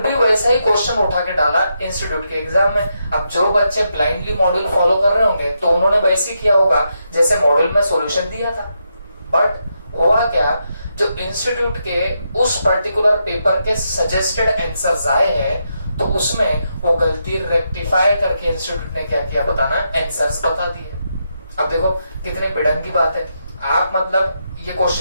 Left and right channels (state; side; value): inverted; both; correlation -0.82